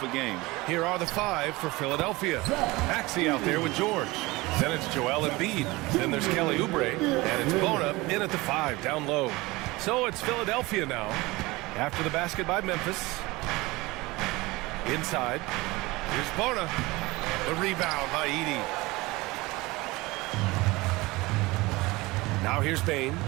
a game. Here are the 5 for Philadelphia. Maxey out there with George. Then it's Joel Embiid. Then there's Kelly Oubre. And it's Bona in at the 5, down low. So it's Philadelphia now. After the basket by Memphis. Inside. Here's Bona. The rebound by Edey. Now here's Bane.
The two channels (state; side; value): quieter; left; 21.7 dB